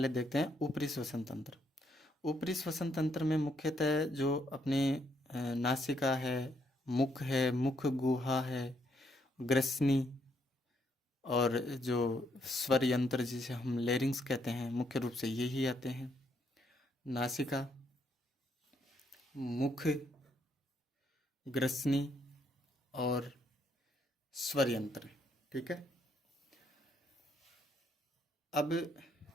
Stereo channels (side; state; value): both; normal; correlation 0.73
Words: देखते हैं ऊपरी श्वसन तंत्र। ऊपरी श्वसन तंत्र में मुख्यतः जो अपने नासिका है, मुख है, मुख गुहा है, ग्रसनी, और जो स्वर यंत्र जिसे हम लेरिंग्स कहते हैं, मुख्य रूप से यही आते हैं। नासिका, मुख, ग्रसनी और स्वर यंत्र। ठीक है, अब